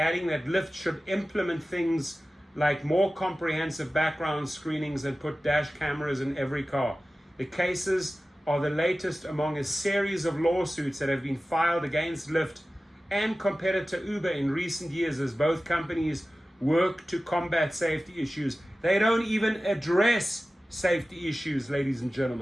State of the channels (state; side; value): normal; both; correlation 0.96